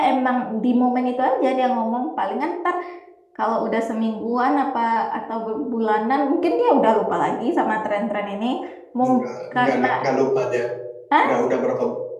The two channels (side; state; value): both; identical; correlation 1.00